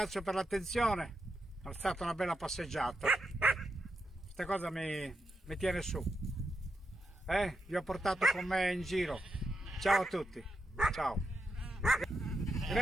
per l'attenzione, è stata una bella passeggiata, questa cosa mi tiene su, vi ho portato con me in giro, ciao a tutti, ciao,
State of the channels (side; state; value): both; normal; correlation 0.85